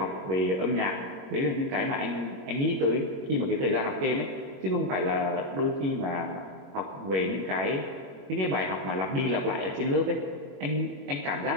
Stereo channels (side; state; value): left; late; 21 ms